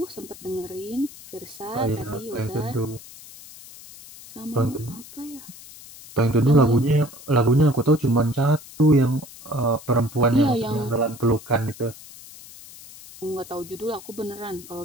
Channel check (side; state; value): left; noise; hiss, 18 dB below the sound